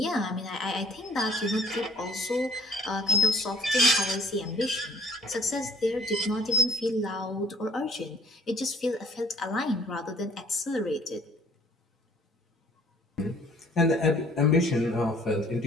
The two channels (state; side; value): normal; both; correlation 0.56